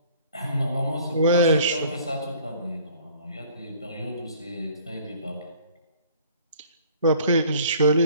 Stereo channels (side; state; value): both; inverted; correlation -0.53